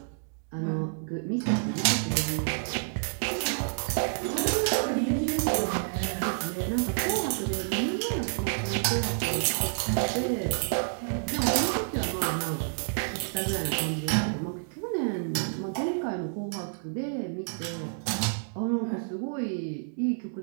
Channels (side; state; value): left; silent; digital silence